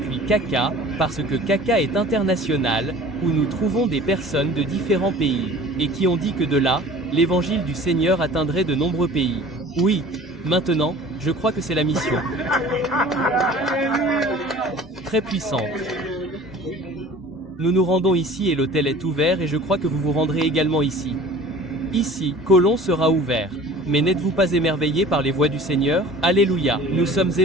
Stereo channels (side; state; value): both; normal; correlation 0.44